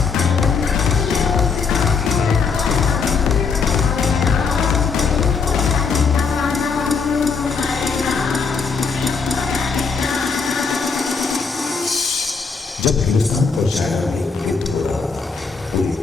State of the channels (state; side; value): quieter; right; 5.2 dB